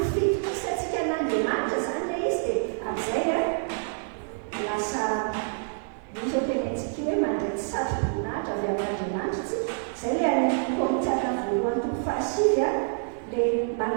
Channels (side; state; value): left; silent; digital silence